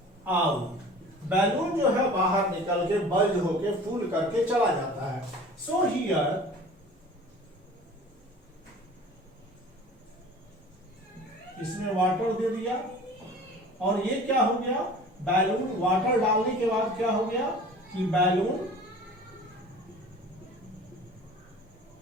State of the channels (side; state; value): both; normal; correlation 0.43